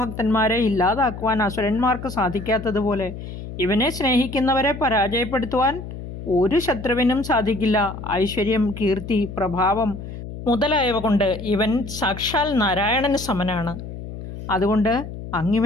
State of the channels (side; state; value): left; noise; hum, 10 dB below the sound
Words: ഇല്ലാതാക്കുവാൻ അസുരന്മാർക്ക് സാധിക്കാത്തതുപോലെ ഇവനെ സ്നേഹിക്കുന്നവരെ പരാജയപ്പെടുത്തുവാൻ ഒരു ശത്രുവിനും സാധിക്കില്ല. ഐശ്വര്യം, കീർത്തി, പ്രഭാവം മുതലായവ കൊണ്ട് ഇവൻ സാക്ഷാൽ നാരായണന് സമനാണ്. അതുകൊണ്ട്